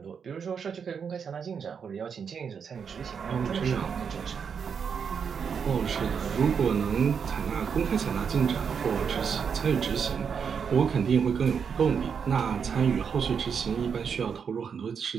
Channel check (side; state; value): left; quieter; 6.7 dB